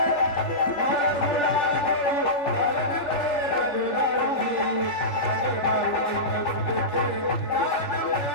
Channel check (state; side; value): late; right; 3.5 ms